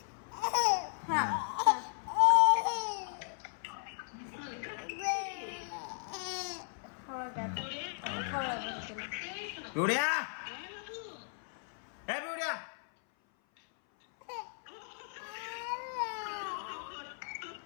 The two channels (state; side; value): silent; right; 54 dB below the other